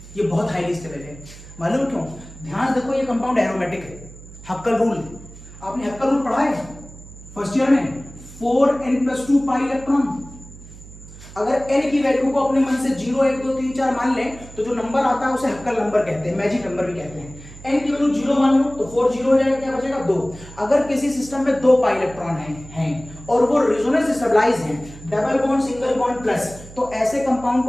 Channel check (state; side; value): noise; right; hum, 17 dB below the sound